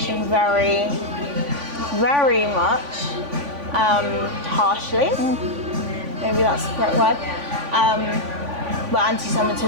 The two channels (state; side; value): late; left; 3.5 ms